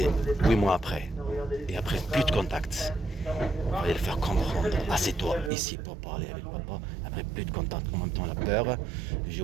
8 mois après. Et après, plus de contact. Il fallait le faire comprendre. Assieds-toi, ici, pour parler avec papa. Après, plus de contact. En même temps, la peur.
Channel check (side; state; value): left; drops out; at 5.5 s